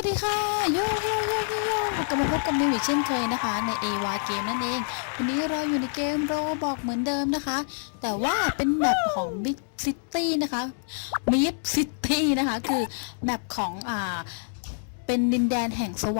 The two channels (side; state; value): right; silent; 61 dB below the other